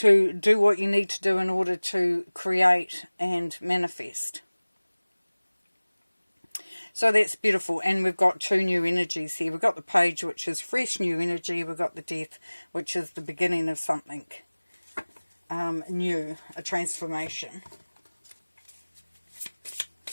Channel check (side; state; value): both; inverted; correlation -1.00